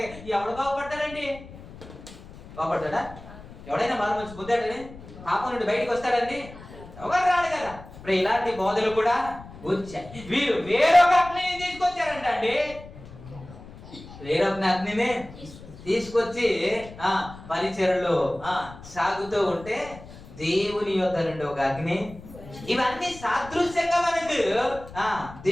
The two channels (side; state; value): left; noise; rumble, 17 dB below the sound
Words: ఎవడు బాగుపడతాడండి? బాగుపడతాడా? ఎవడైనా మారు మంచి పొందాడని పాపం నుండి బయటకు వస్తాడండి? ఎవరు రాడు కదా. ఇప్పుడు ఇలాంటి బోధలు కూడా వచ్చాయి. వీరు వేరొక అగ్నిని తీసుకొచ్చారంట అండి. వేరొక అగ్నిని తీసుకొచ్చి పరిచర్యలో సాగుతూ ఉంటే దేవుని యొద్ద నుండి ఒక అగ్ని. ఇవన్నీ సాదృశ్యంగా మనకు